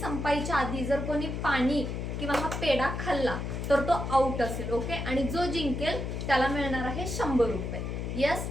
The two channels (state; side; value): noise; left; hum, 4 dB below the sound